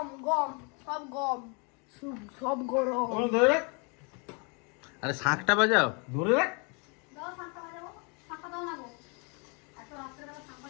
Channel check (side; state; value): right; quieter; 33.4 dB